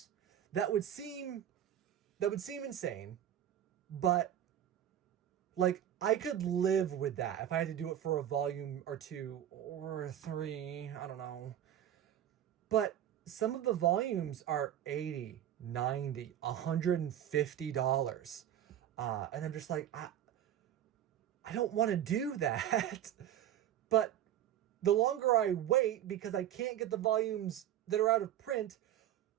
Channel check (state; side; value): quieter; left; 11.1 dB